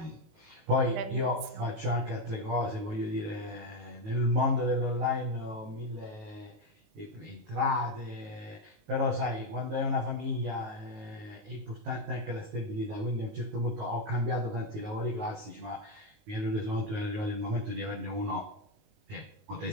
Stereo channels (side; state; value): left; late; 20 ms